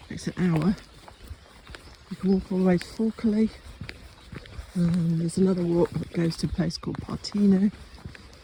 takes an hour. You can walk all the way to Falkerley. There's another walk that goes to a place called Partino.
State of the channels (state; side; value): identical; both; correlation 1.00